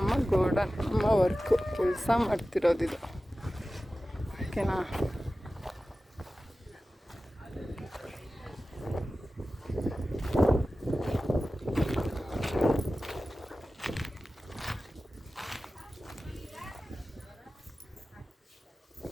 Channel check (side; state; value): both; normal; correlation 0.95